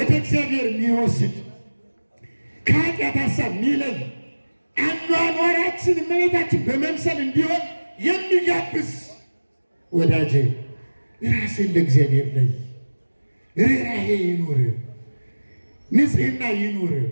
እግዚአብሔር የሚወስድ፣ ከኃጢአት ሀሳብ የሚለይ፣ አኗኗራችን እመቤታችን በመምሰል እንዲሆን የሚጋብዝ። ወዳጄ ራስን ለእግዚአብሔር ለይ። ርኅራኄ ይኑር፣ ንጽሕና ይኑር፣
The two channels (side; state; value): both; inverted; correlation -1.00